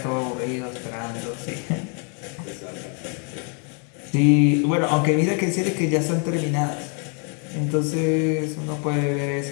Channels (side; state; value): right; quieter; 39.6 dB